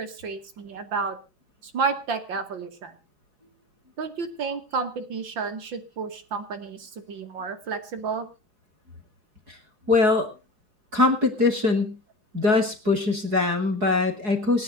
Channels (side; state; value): left; late; 4.8 ms